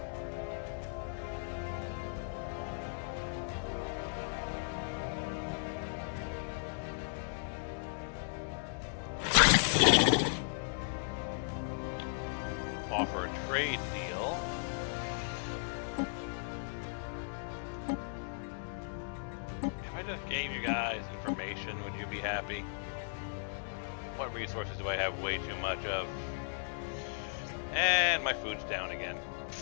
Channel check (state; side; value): silent; right; 54 dB below the other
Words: Offer a trade deal. If I just gave you guys information, would you be happy? What resources do I have way too much of? And my food's down again.